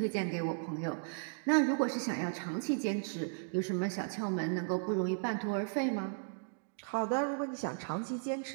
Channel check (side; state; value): left; silent; digital silence